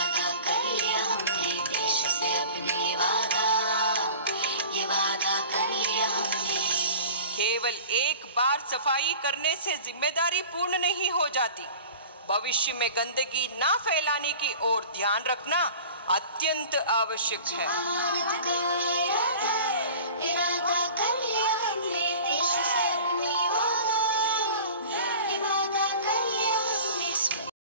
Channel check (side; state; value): both; inverted; correlation -0.40